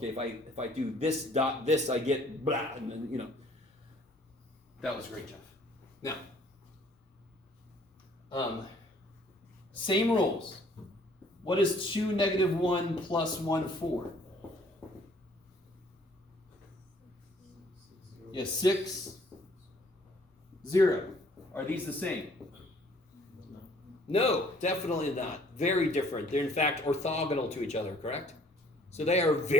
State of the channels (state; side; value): normal; both; correlation 0.59